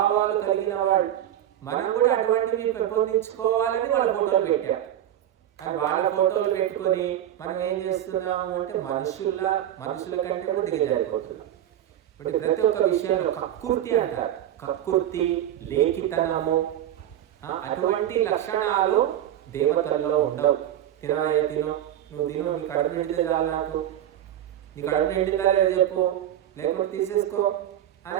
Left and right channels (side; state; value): left; quieter; 11.6 dB